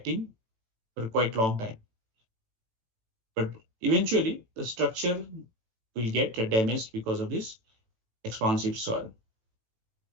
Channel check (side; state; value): left; late; 18 ms